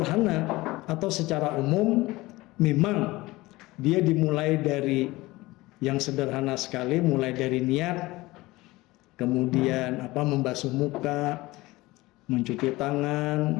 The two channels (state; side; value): quieter; right; 20.0 dB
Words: atau secara umum, memang dia dimulai dari yang sederhana sekali, mulai dari niat, kemudian membasuh muka, mencuci tangan,